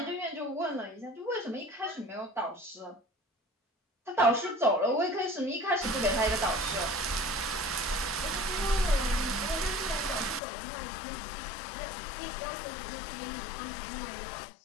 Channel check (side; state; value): right; drops out; at 10.4 s